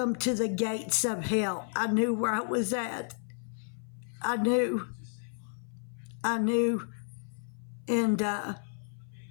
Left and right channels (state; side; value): silent; right; 57 dB below the other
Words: to the gates of hell." I knew where I was at. I knew. And